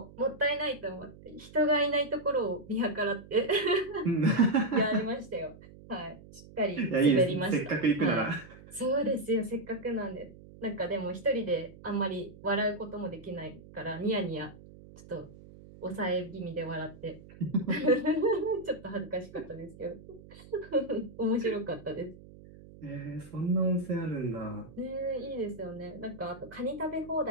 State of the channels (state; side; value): noise; right; hum, 19 dB below the sound